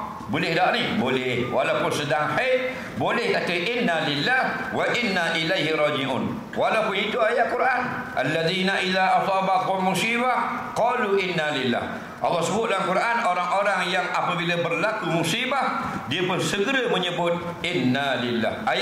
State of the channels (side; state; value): both; identical; correlation 1.00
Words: boleh tak ni? Boleh, walaupun sedang haid boleh kata inna lillah wa inna ilaihi raji'un, walaupun itu ayat Quran. Alladzina idza asabakum musibah qalu inna lillah. Allah sebut dalam Quran orang-orang yang apabila berlaku musibah dia pun segera menyebut inna lillah,